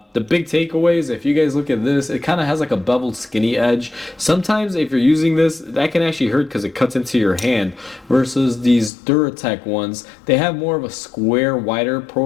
The big takeaways, if you guys look at this, it kind of has like a beveled skinny edge. Sometimes if you're using this, that can actually hurt because it cuts into your hand, versus these Duratech ones, they have more of a square, wider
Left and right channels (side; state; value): right; drops out; at 8.9 s